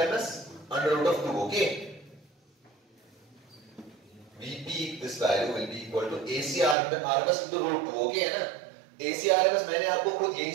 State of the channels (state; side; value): drops out; left; at 6.8 s